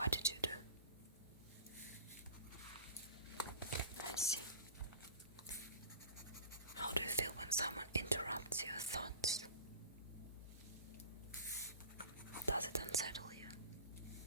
did you do? I see. How do you feel when someone interrupts your thoughts? Does it unsettle you?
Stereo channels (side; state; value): both; inverted; correlation -0.37